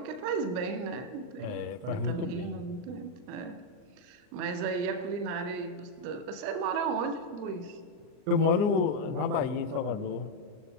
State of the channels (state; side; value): late; left; 39 ms